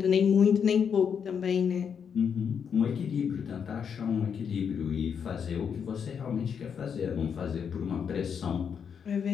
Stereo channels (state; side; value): quieter; right; 7.2 dB